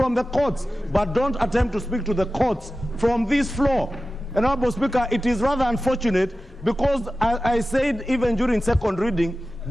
the courts, but don't attempt to speak to the courts from this floor. And Honorable Speaker, it is rather unfortunate because I said even during second reading,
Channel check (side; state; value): both; normal; correlation 0.95